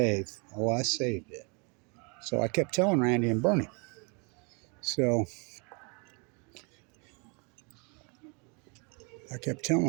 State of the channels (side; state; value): left; quieter; 33.3 dB